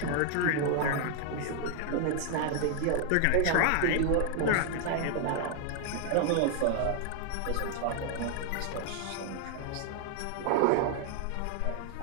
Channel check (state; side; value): different; both; correlation 0.00